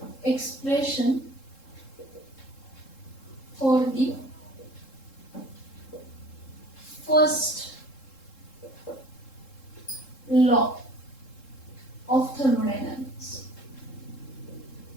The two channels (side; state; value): right; late; 3.7 ms